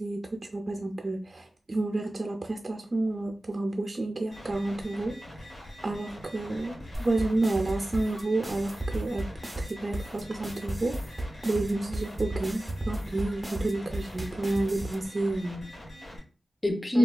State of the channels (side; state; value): both; normal; correlation 0.96